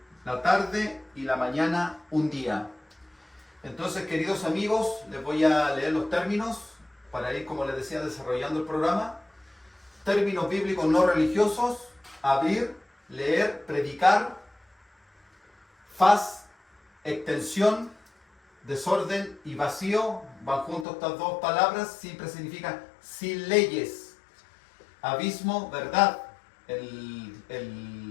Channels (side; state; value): right; drops out; at 20.9 s